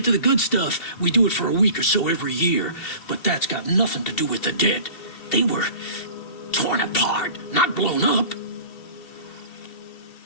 to the good stuff, we do it for a week or so every year. But that's got nothing to do with the dead. They were torn apart, not blown up.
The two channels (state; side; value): late; right; 2.7 ms